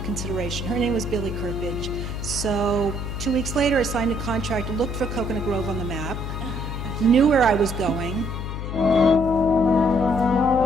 consideration. Her name was Billy Kirpage. So 2 weeks later, I signed a contract, looked for Coconut Grove on the map, knew where I was going.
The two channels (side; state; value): left; noise; hum, 5 dB below the sound